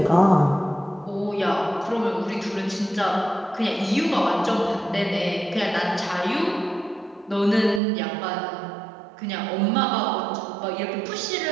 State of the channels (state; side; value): drops out; left; at 7.8 s